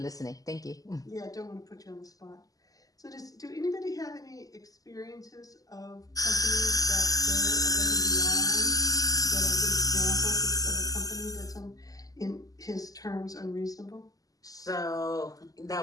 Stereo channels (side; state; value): right; late; 0.17 ms